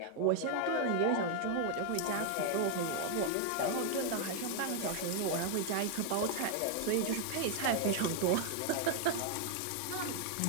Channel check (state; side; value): different; both; correlation 0.00